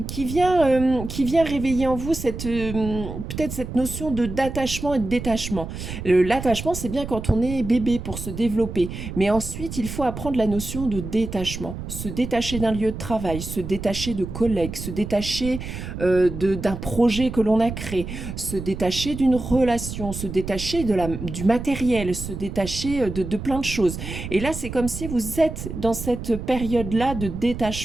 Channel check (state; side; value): noise; right; rumble, 8 dB below the sound